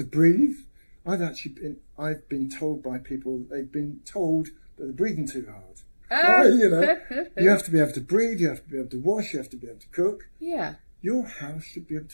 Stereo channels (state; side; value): inverted; both; correlation -1.00